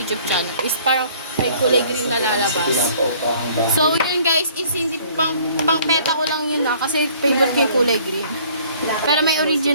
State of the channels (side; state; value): both; inverted; correlation -0.56